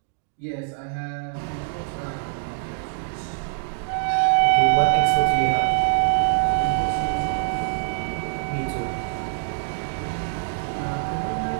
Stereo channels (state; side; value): silent; left; digital silence